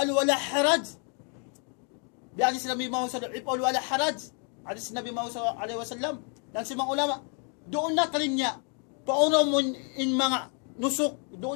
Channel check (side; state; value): right; quieter; 39.8 dB